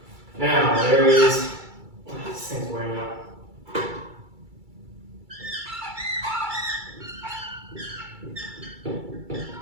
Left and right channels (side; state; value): left; late; 2.3 ms